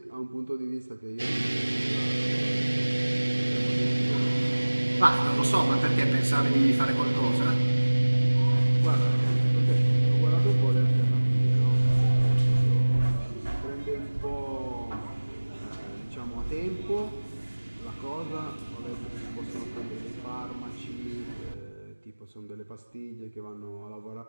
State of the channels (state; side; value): inverted; both; correlation -1.00